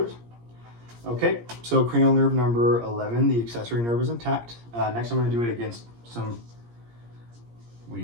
Okay, so cranial nerve number 11, the accessory nerve is intact. Next, I'm going to do it against some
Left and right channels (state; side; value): late; left; 17 ms